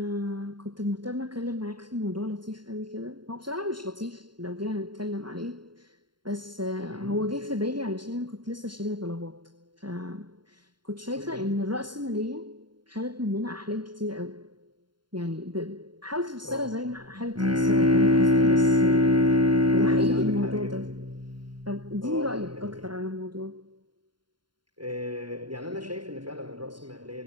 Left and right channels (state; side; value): late; left; 0.72 ms